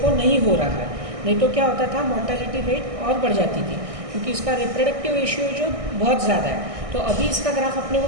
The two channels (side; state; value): left; late; 1.6 ms